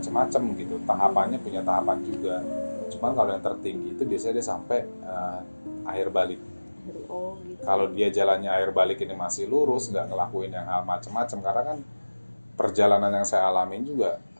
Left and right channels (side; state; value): both; inverted; correlation -1.00